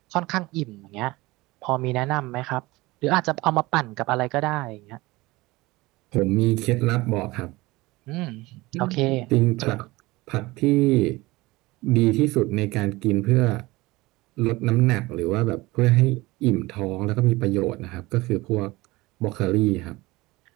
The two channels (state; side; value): quieter; left; 20.9 dB